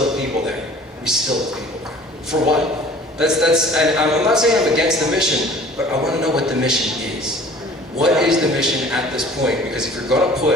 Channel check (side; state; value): both; normal; correlation 0.48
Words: have people there. We still have people there. For what? And I'm not saying I'm against the mission, but I want to know what the mission is. What is the mission at this point? Because if you're going to